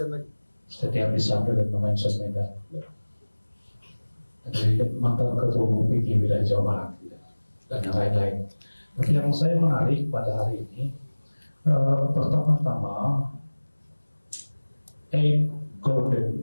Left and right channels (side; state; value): both; inverted; correlation -1.00